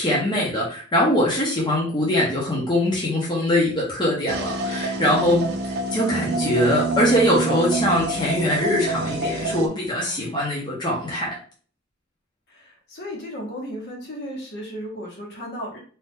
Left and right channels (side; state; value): both; normal; correlation 0.39